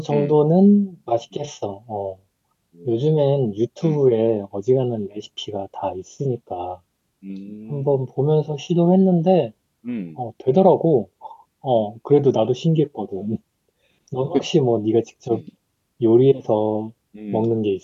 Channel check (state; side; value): identical; both; correlation 1.00